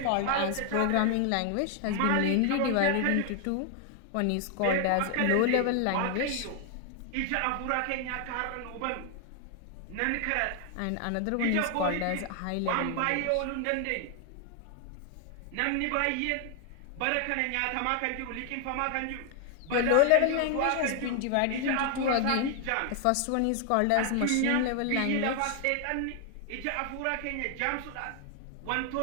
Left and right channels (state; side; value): different; both; correlation 0.00